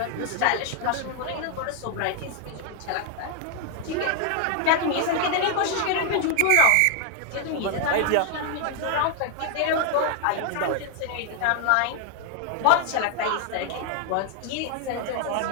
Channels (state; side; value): different; both; correlation 0.00